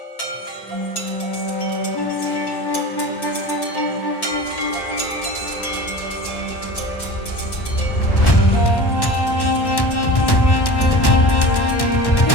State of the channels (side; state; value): right; late; 1.1 ms